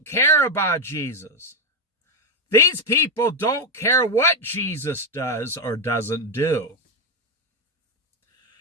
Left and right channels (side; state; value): both; normal; correlation 0.05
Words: care about Jesus. These people don't care what Jesus does or doesn't do.